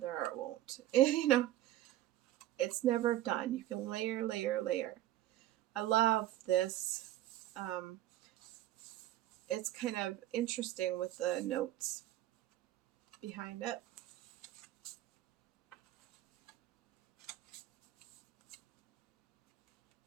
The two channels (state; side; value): quieter; left; 13.9 dB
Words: or it won't. You know, it's never done. You can layer, layer, layer. I love this. It's kind of interesting with the notes behind it.